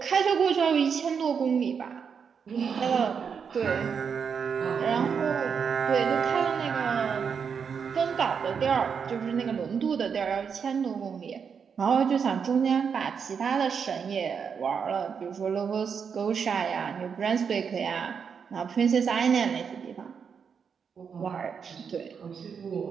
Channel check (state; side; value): quieter; left; 6.5 dB